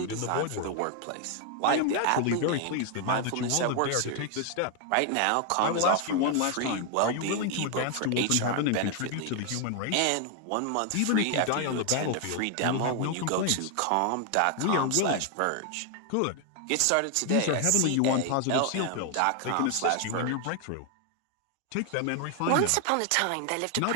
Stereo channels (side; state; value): both; different; correlation 0.00